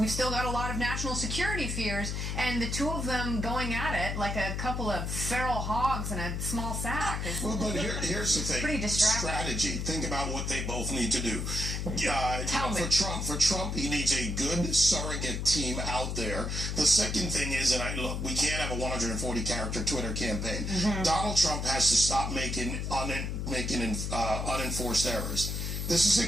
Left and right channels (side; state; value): left; noise; hum, 2 dB below the sound